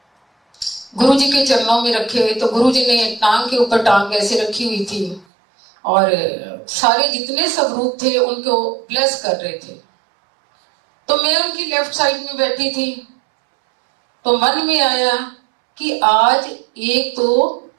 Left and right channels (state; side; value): drops out; left; at 5.2 s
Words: गुरुजी के चरणों में रखे। तो गुरुजी ने टांग के ऊपर टांग ऐसे रखी हुई थी और सारे जितने स्वरूप थे उनको ब्लेस कर रहे थे। तो मैं उनकी लेफ्ट साइड में बैठी थी, तो मन में आया कि आज एक तो